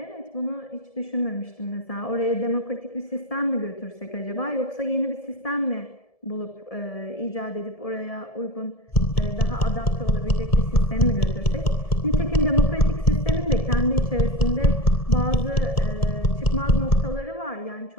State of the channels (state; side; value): late; right; 1.7 ms